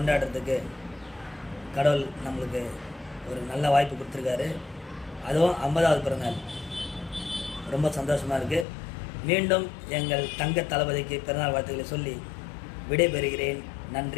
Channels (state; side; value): drops out; right; at 8.7 s